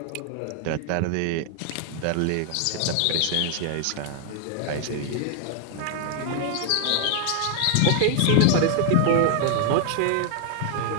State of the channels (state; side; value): different; both; correlation 0.00